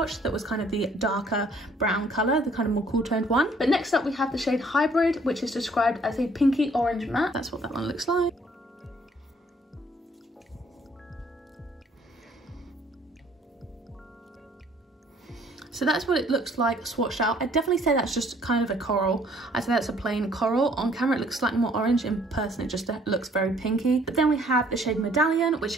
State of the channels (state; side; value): normal; both; correlation 0.61